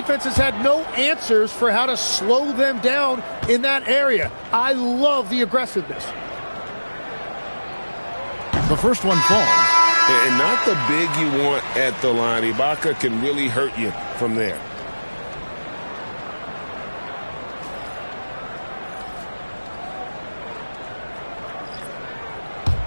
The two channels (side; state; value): both; inverted; correlation -1.00